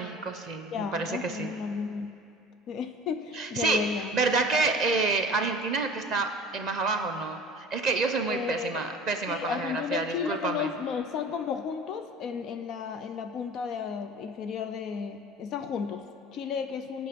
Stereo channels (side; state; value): both; normal; correlation 0.42